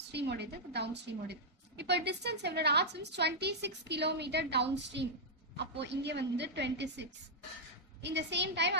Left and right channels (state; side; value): normal; both; correlation -0.07